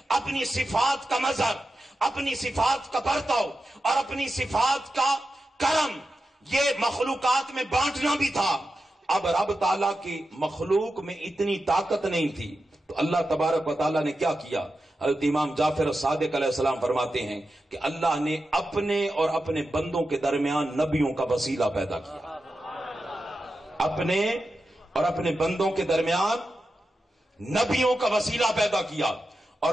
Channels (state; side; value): normal; both; correlation 0.91